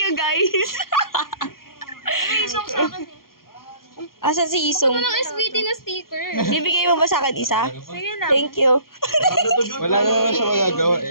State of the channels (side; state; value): right; late; 0.92 ms